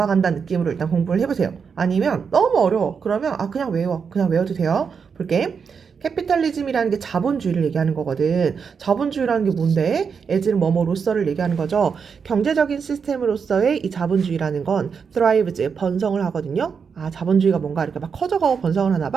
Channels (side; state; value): left; quieter; 6.1 dB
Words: 느낌으로 일단 공부를 해보세요. 아니면 너무 어려워. 그러면 그냥 외워. 그냥 외워도 돼요. 볼게. 캐피탈리즘이라는 게 자본주의를 얘기하는 거거든. 자본주의라는 게 뭔데? 에즈는 뭐뭐로서를 얘기하는 거죠. 경제적인 시스템으로서의 이 자본주의라는 건 thrives, 번성을 하거든요. 자본주의가 뭔가 이렇게 막 커져가고 번성을 하나